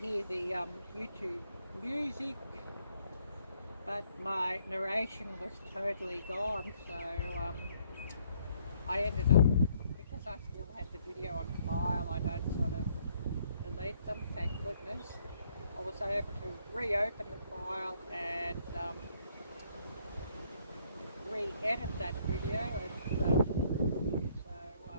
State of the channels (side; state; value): both; inverted; correlation -0.68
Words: the YouTube music, but my narration was totally gone. So I ended up, because I still had the video on file, I don't sort of delete them, thank goodness. I was able to reopen the file and re-edit that video, and so I